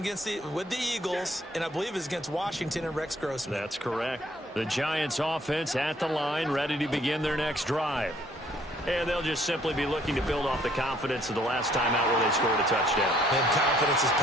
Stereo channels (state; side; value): normal; both; correlation 0.63